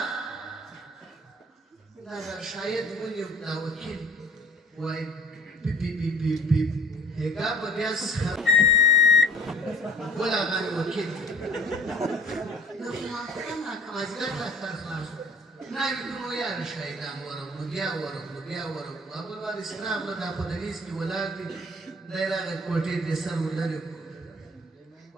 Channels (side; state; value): both; normal; correlation 0.49